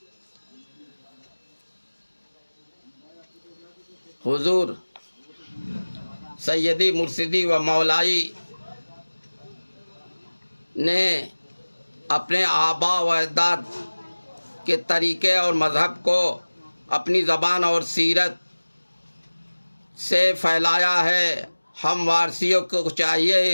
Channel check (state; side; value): inverted; both; correlation -1.00